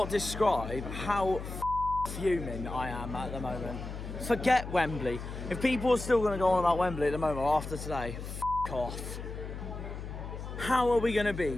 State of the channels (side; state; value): left; noise; hum, 8 dB below the sound